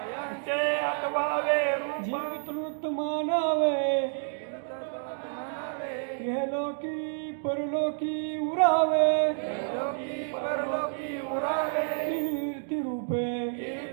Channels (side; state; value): left; silent; digital silence